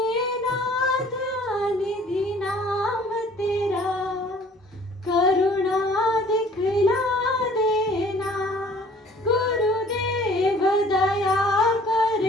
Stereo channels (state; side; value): normal; both; correlation 0.53